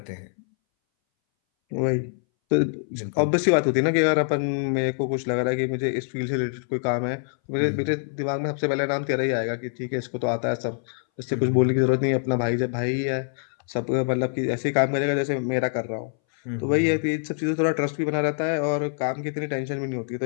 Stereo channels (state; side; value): silent; right; 61 dB below the other